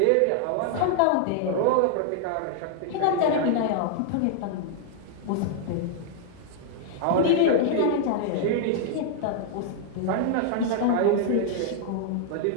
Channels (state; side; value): different; both; correlation -0.01